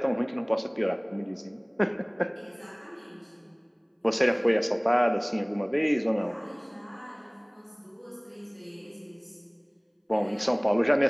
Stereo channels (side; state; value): both; identical; correlation 1.00